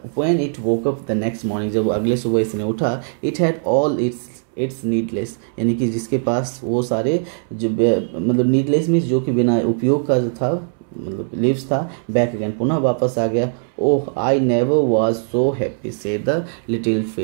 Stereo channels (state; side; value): silent; left; 66 dB below the other